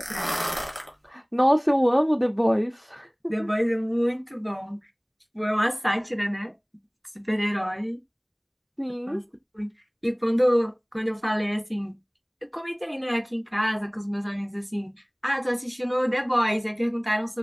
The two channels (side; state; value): both; identical; correlation 1.00